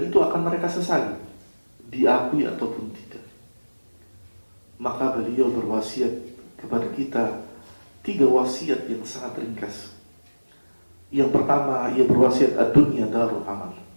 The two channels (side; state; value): both; inverted; correlation -1.00